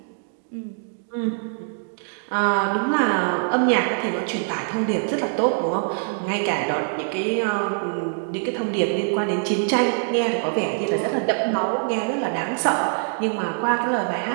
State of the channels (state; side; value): silent; left; digital silence